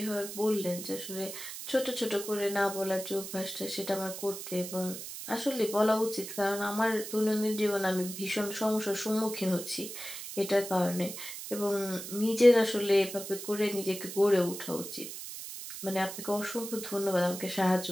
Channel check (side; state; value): right; noise; hiss, 9 dB below the sound